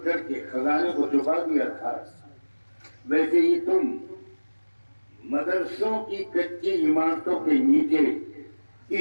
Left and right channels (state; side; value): inverted; both; correlation -1.00